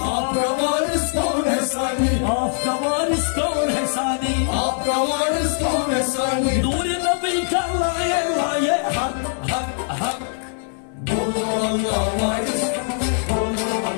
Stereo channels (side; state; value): right; silent; 64 dB below the other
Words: आपका वारिस कौन है सानी, Afka varis kaun hai sani. आपका वारिस कौन है सानी। Nuri nabi ka laye laye hak hak hak. बोलो अल्लाह वारिस, बोलो